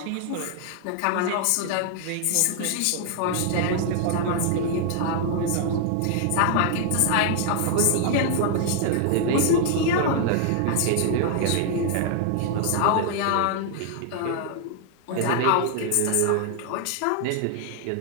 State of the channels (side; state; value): both; different; correlation 0.00